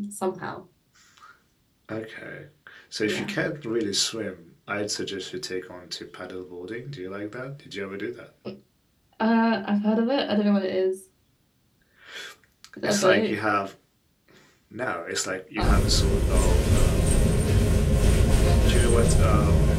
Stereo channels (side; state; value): both; identical; correlation 1.00